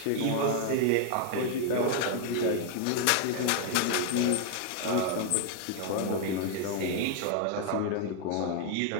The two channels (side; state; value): both; different; correlation 0.00